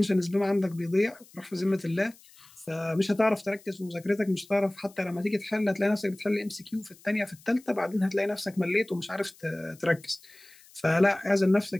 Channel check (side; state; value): left; noise; hiss, 25 dB below the sound